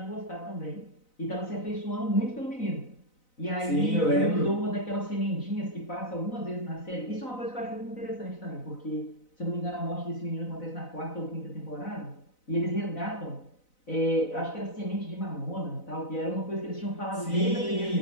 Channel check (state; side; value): late; right; 4.0 ms